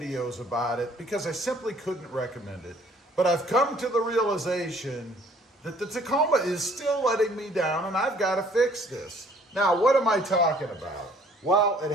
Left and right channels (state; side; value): normal; both; correlation 0.58